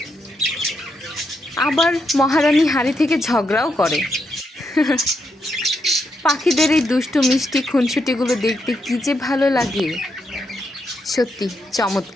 আবার মহারানী হাঁড়ি থেকে ঝগড়াও করে। পাখিদের এই দুষ্টু মিষ্টি খুনসুটিগুলো দেখতে কি যে ভালো লাগে, সত্যি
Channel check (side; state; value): both; normal; correlation 0.81